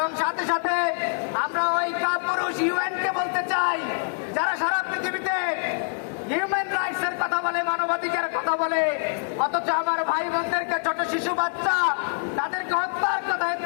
সাথে সাথে আমরা ওই কাপুরুষ ইউএনকে বলতে চাই, যারা সারা পৃথিবীতে হিউম্যান রাইটস এর কথা বলে, মানবাধিকারের কথা বলে, অথচ আমার ভাই বোনদেরকে, ছোট শিশু বাচ্চা, তাদেরকে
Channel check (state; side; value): silent; right; 62 dB below the other